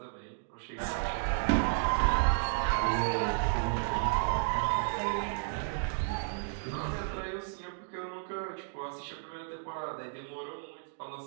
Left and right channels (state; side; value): silent; left; digital silence